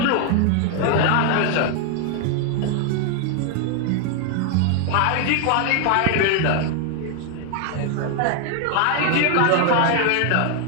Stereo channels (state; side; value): different; both; correlation 0.00